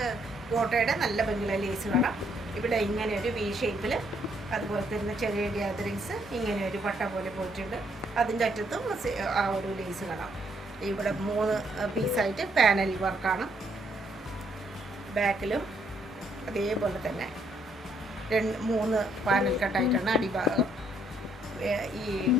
കോട്ടയുടെ നല്ല ഭംഗിയുള്ള ലേസ് കാണാം. ഇവിടെ ഇങ്ങനെ ഒരു വി ഷേപ്പിൽ, അതുപോലെ തന്നെ ചെറിയ ഗ്യാതറിങ്സ് ഇങ്ങനെ ഒരു പട്ട പോലെ പോയിട്ടുണ്ട്. അതിൻ്റെ അറ്റത്തും ആ ഒരു ലേസ് കാണാം. ഇവിടെ 3 പീസായിട്ട് പാനൽ വർക്കാണ്. ബാക്കിലും അതേപോലെ തന്നെ 3 പാനൽ കട്ടായിട്ടാണ് അടിഭാഗം. ഈ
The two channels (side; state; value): both; normal; correlation 0.70